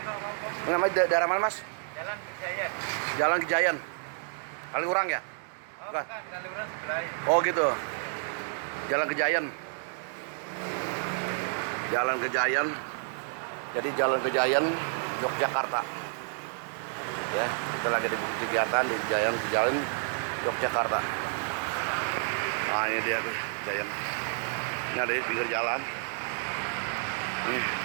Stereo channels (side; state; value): left; silent; 58 dB below the other